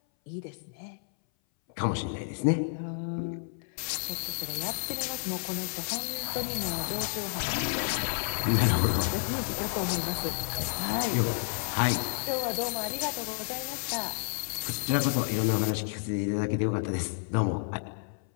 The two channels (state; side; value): silent; right; 57 dB below the other